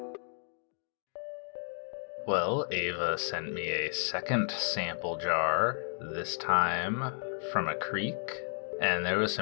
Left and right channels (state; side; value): silent; right; 56 dB below the other